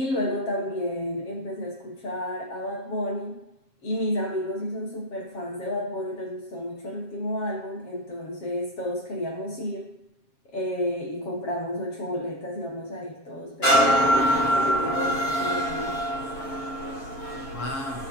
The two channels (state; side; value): late; right; 7.4 ms